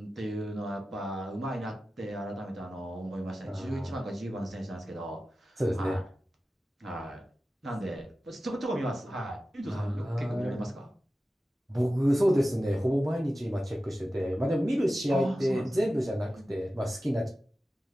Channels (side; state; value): both; normal; correlation 0.94